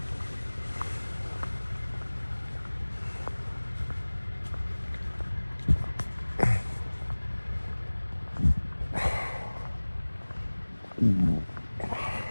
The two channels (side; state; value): both; inverted; correlation -1.00